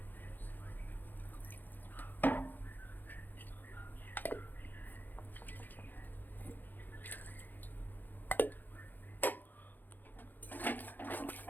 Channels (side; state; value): right; late; 0.087 ms